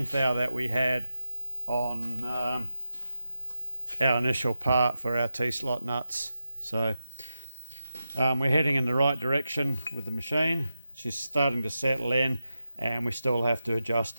thou that we had on our initial part for our T-slot nuts. So we're heading in the right direction with the machine. She's starting to settle in, and we still have to adjust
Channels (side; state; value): both; inverted; correlation -0.90